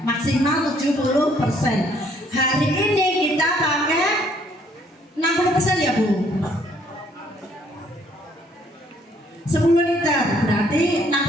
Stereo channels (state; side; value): normal; both; correlation 0.64